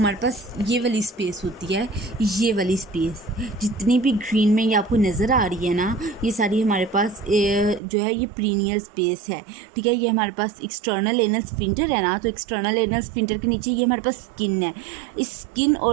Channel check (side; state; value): left; drops out; at 7.8 s